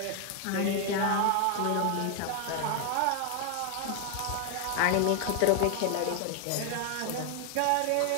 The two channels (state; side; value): different; both; correlation 0.00